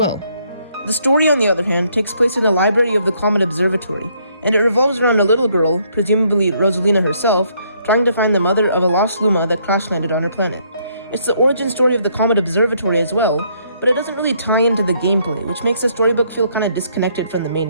The story, on the other hand, takes place in the library of the Comet Observatory, and it revolves around a little girl, presumably Rosalina herself, trying to find the mother of a lost Luma that crash-landed on her planet. It's the origin story of the Comet Observatory as well, but it doesn't really tie into the gameplay, which makes the storybook feel kinda disconnected from the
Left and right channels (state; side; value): inverted; both; correlation -0.69